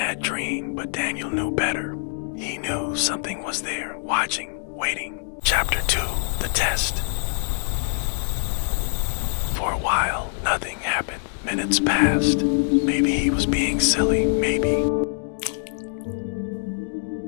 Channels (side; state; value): right; silent; digital silence